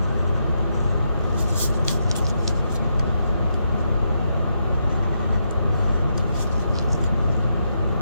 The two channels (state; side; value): inverted; both; correlation -0.82